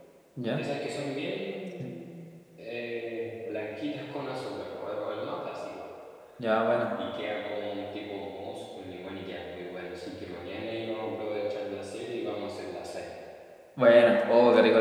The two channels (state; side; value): identical; both; correlation 1.00